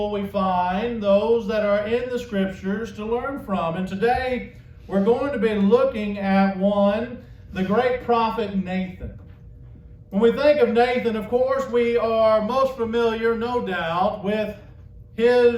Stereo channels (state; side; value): identical; both; correlation 1.00